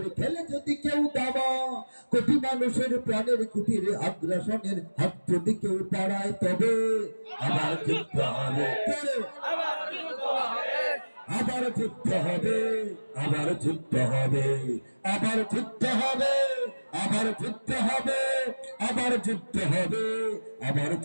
খেলে যদি কেউ দাবা, কোটি মানুষের প্রাণের কুটিরে আগ্রাসনের হাত যদি কেউ পাড়ায়, তবে আবার যুদ্ধ হবে, আবার যুদ্ধ হবে, আবার যুদ্ধ হবে, আবার যুদ্ধ হবে, আবার যুদ্ধ হবে, আবার যুদ্ধ হবে, আবার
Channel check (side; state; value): both; inverted; correlation -1.00